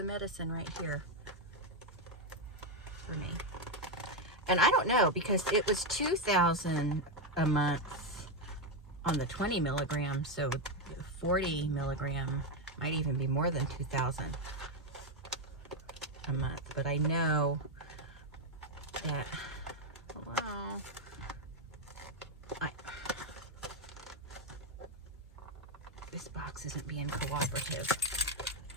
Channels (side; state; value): both; normal; correlation 0.05